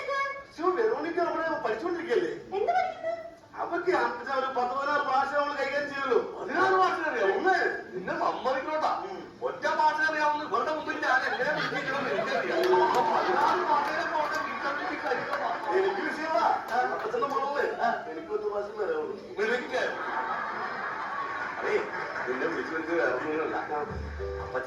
വെറോണിക്ക നമ്മളെ പഠിച്ചുകൊണ്ടിരിക്കല്ലേ? എന്ത് പഠിക്കുന്നു? അവർക്ക് ഒരു 10-16 ഭാഷ നമ്മൾ കൈകാര്യം ചെയ്യുള്ളൂ. 16 ഭാഷ അറിയാം. ഒന്ന് നിന്നെ സമ്മതിക്കണോട്ടാ, ഒറ്റ ഭാഷ അറിയാവുന്ന ഇവരുടെ മുമ്പിൽ ഞാൻ എങ്ങനെ വിളിക്കണമെന്ന് എനിക്കറിയാം. 16 ഭാഷയുടെ എനിക്ക് വിഷയമാ. അപ്പച്ചന്റെ മോളെ എനിക്ക് 10 ഭാഷ വരാവുള്ളൂ. അതേ, നിന്നെ വിളിച്ചു വിളിച്ച് വേറൊന്നുമില്ല.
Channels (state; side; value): identical; both; correlation 1.00